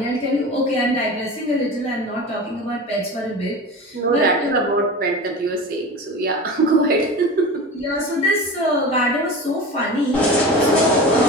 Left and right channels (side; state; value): both; normal; correlation 0.31